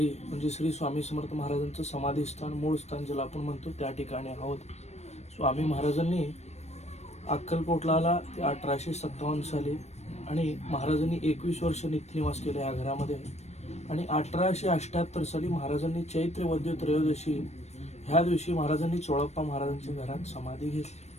म्हणजे श्री स्वामी समर्थ महाराजांचं समाधीस्थान मूळ स्थान ज्याला आपण म्हणतो त्या ठिकाणी आहोत. स्वामी महाराजांनी अक्कलकोटला आला ते 1857 साली आणि महाराजांनी 21 वर्ष नित्यनिवास केले या घरामध्ये आणि 1878 साली महाराजांनी चैत्र वद्य त्रयोदशी ह्या दिवशी महाराजांनी चोळप्पा महाराजांच्या घरात समाधी घेतली.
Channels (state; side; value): late; right; 0.32 ms